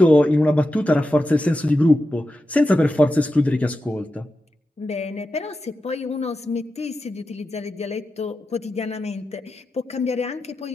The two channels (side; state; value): both; normal; correlation 0.90